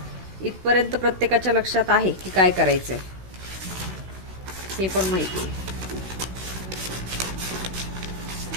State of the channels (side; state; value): left; late; 16 ms